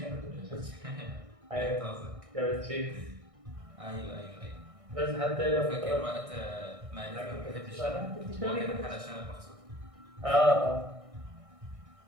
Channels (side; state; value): left; late; 1.6 ms